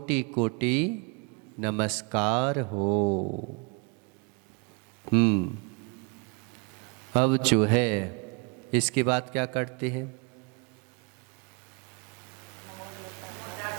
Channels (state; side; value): quieter; left; 32.6 dB